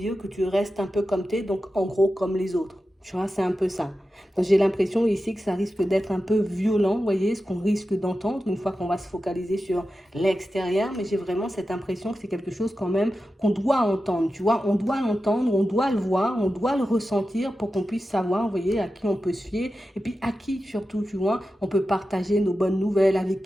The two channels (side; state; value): both; normal; correlation 0.92